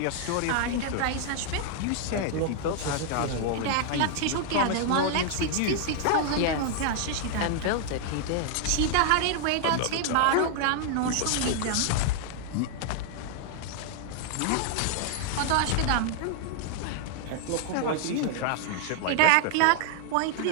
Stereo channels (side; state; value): both; different; correlation 0.00